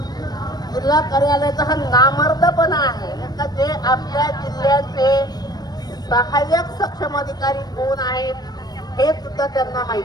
जिल्हा कार्यालयाचा हा नामर्दपणा आहे का जे आपल्या जिल्ह्याचे सहाय्यक सक्षम अधिकारी कोण आहेत हे सुद्धा त्यांना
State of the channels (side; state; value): right; late; 0.19 ms